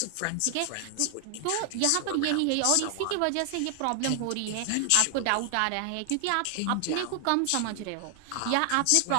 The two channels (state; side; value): different; both; correlation 0.00